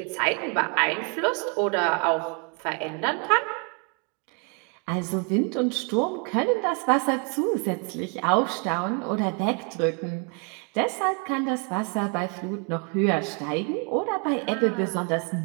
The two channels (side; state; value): left; quieter; 35.8 dB